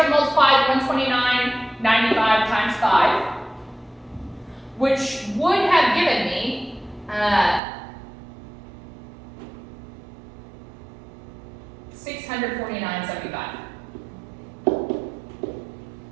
multiplied $129.95 times 5, which would have given me $649.75.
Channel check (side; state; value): left; drops out; at 7.6 s